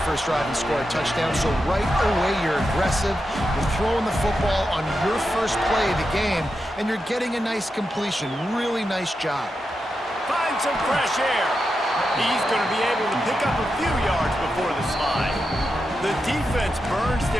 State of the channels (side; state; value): both; normal; correlation 0.88